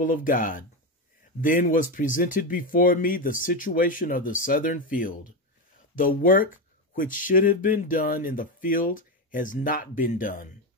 of God. Then was presented before me the situation of the Southern field. The work which should have been done in the field has not been done.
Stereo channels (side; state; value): both; normal; correlation 0.13